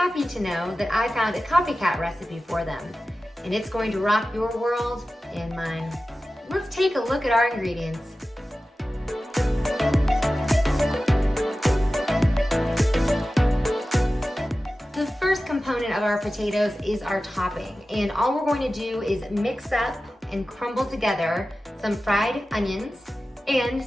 to know that I found a Copycat recipe for them. And it's going to rock your world and mine. Let's take a look at our ingredients. The first component of our potatoes is our topping. And all we're going to do is mix up and crumble together some fried onions and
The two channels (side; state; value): both; normal; correlation 0.95